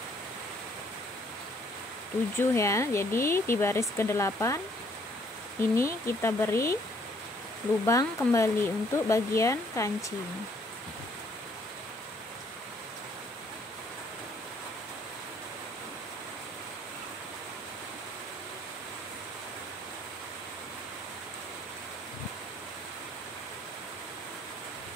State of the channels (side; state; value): both; normal; correlation 0.64